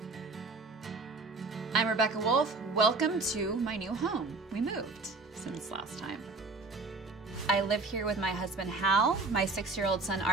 I'm Rebecca Wolf. Welcome to my new home. We moved since last time. I live here with my husband Hal, my 6-year-old son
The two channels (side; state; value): left; quieter; 3.7 dB